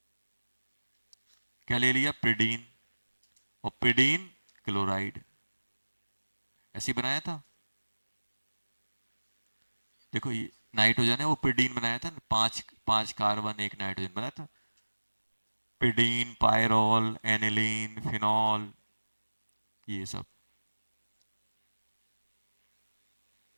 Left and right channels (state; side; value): inverted; both; correlation -1.00